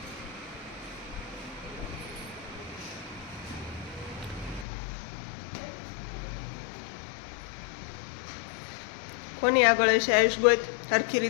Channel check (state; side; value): drops out; right; at 4.7 s